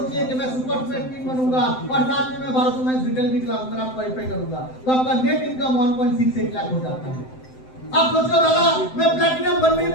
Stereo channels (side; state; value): right; late; 7.8 ms